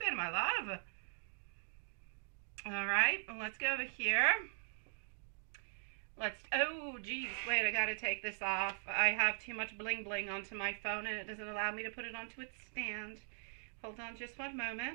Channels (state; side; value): silent; left; digital silence